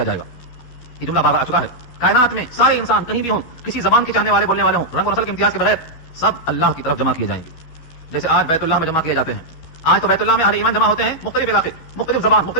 جائے گا۔ یہ جملہ بار بار آ چکا ہے۔ کائنات میں سارے انسان کہیں بھی ہوں، کسی زبان کے چاہنے والے بولنے والے ہوں، رنگ و نسل کے امتیاز کے بغیر، سب اللہ کی طرف جمع کیے جائیں گے۔ جیسے آج بیت اللہ میں جمع کیے جاتے ہیں، آج تو بیت اللہ میں اہل ایمان جمع ہوتے ہیں، مختلف علاقے، مختلف زبان،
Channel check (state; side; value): late; right; 12 ms